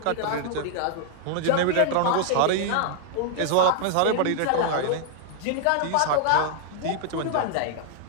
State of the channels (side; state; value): both; different; correlation -0.01